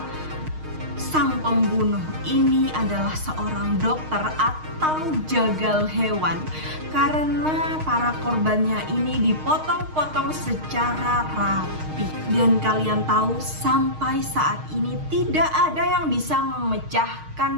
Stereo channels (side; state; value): left; late; 6.4 ms